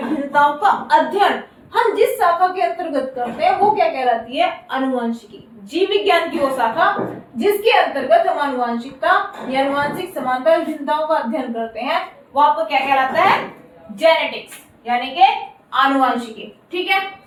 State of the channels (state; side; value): identical; both; correlation 1.00